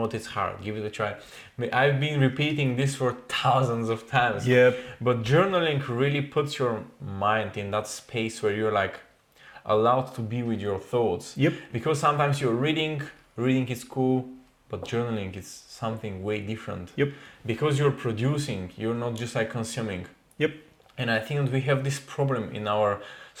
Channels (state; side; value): identical; both; correlation 1.00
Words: it's hard, give it a try. I've been repeating this for thousands of times. But journaling really puts your mind in that space where you're like allowed to be with your thoughts. Because sometimes you're reading is cool, but journaling is something way different. Because you're producing, you're not just like consuming. And I think that we have this problem in our